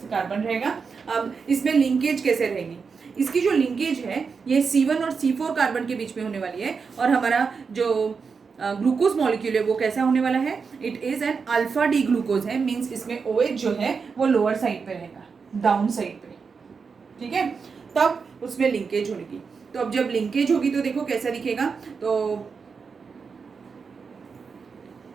कार्बन रहेगा। अब इसमें लिंकेज कैसे रहेगी, इसकी जो लिंकेज है ये C1 और C4 कार्बन के बीच में होने वाली है और हमारा जो ग्लूकोज मॉलिक्यूल है वो कैसा होने वाला है, it is an alpha D glucose है, मीन्स इसमें OH जो है वो लोअर साइड पे रहेगा, डाउन साइड पे। ठीक है, तब उसमें लिंकेज होगी। तो अब जब लिंकेज होगी तो देखो कैसा दिखेगा, तो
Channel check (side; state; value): left; quieter; 5.4 dB